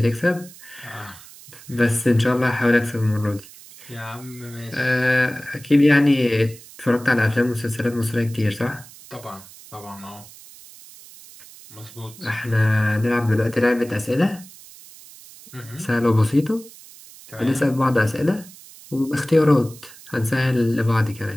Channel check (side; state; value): right; noise; hiss, 20 dB below the sound